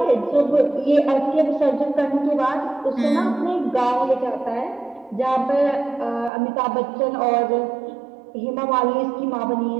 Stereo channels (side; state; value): left; drops out; at 6.3 s